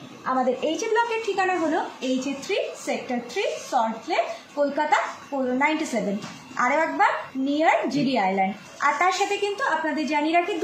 আমাদের এইচে ব্লকের ঠিকানা হলো HA3 সেক্টর 3 সল্টলেক, কলকাতা 97। আরও একবার নিয়ার জিডি আইল্যান্ড। আর তার সাথে কিন্তু আপনাদের জানিয়ে রাখি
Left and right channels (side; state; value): both; identical; correlation 1.00